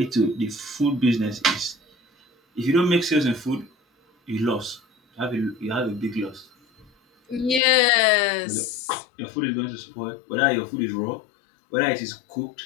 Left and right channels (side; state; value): right; drops out; at 7.6 s